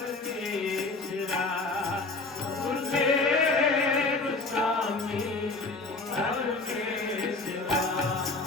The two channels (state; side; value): quieter; right; 3.5 dB